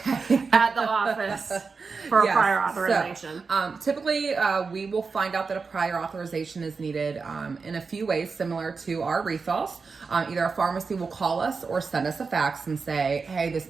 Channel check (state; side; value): quieter; left; 4.8 dB